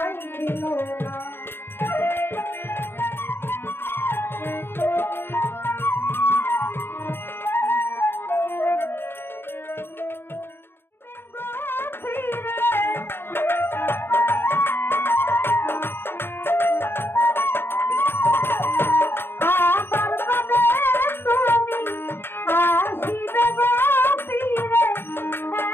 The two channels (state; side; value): late; right; 0.11 ms